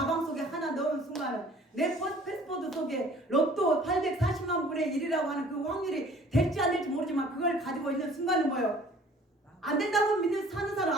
속에 하나 넣은 순간은, 내 패스포드 속에 로또 840만 분의 1이라고 하는 그 확률이 될지 안 될지 모르지만 그걸 가지고 있는 순간은 뭐예요? 안 된다고 믿는 사는 사람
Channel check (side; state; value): both; normal; correlation 0.52